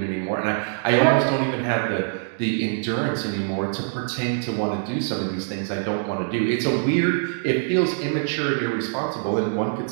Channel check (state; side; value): silent; left; digital silence